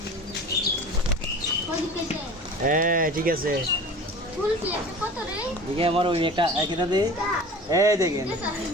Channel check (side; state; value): both; normal; correlation 0.38